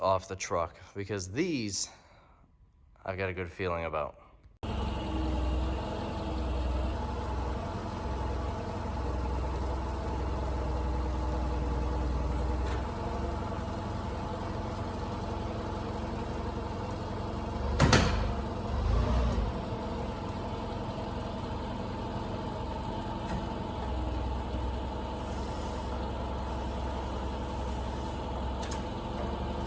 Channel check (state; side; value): identical; both; correlation 1.00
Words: the truck, because these I've got a good feeling about.